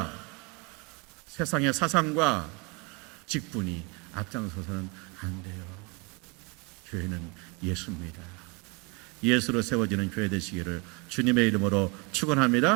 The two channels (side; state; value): left; quieter; 30.0 dB